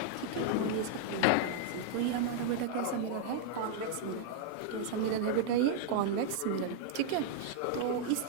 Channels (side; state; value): both; different; correlation -0.01